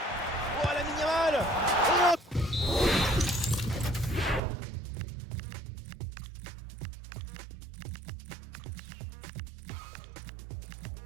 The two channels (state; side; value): drops out; left; at 4.4 s